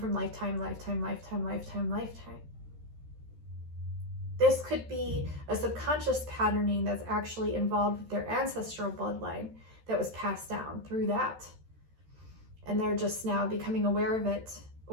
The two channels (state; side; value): late; left; 13 ms